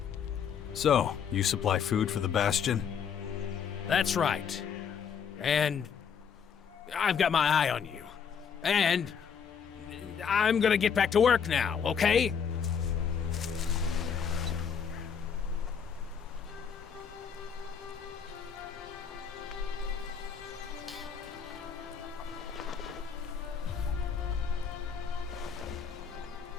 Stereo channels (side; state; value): right; quieter; 7.0 dB